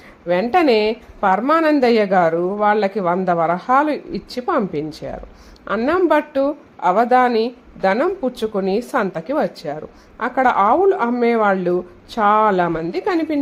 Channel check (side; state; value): both; identical; correlation 1.00